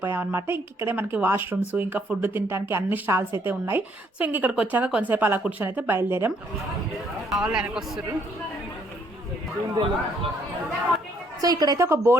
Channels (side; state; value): both; normal; correlation 0.68